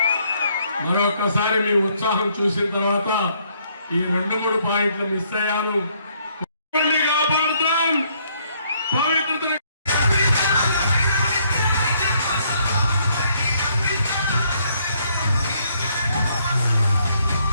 మరొకసారి మీ ఉత్సాహం చూసిన తర్వాత ఈ 2-3 పాయింట్లు మిస్ అయ్యాను. కాపాడుతాం పవిత్రత.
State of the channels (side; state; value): both; inverted; correlation -0.68